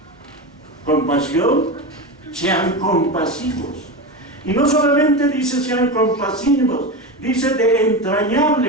Compasión, sean compasivos. Y no solamente dice sean compasivos, dice de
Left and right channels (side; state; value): both; normal; correlation 0.20